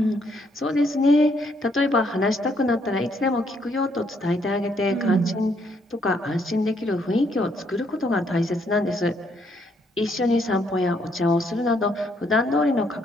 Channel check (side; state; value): both; normal; correlation 0.71